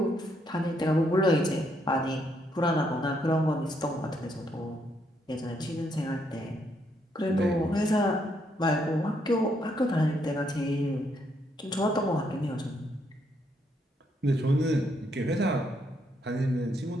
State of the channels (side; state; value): both; normal; correlation 0.74